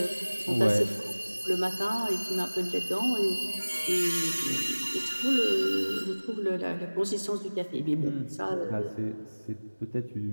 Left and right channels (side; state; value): both; inverted; correlation -1.00